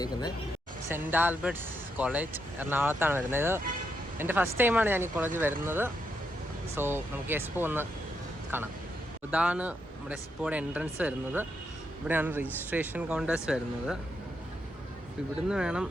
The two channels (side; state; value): both; normal; correlation 0.81